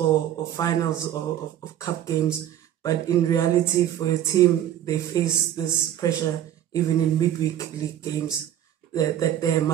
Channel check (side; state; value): left; quieter; 11.3 dB